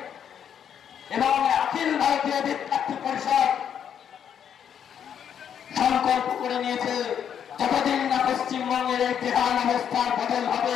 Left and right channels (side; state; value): right; quieter; 8.6 dB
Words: এবং অখিল ভারতীয় বিদ্যার্থী পরিষদ সংকল্প করে নিয়েছে, যতদিন না পশ্চিমবঙ্গের এই বেহাল অবস্থার বদল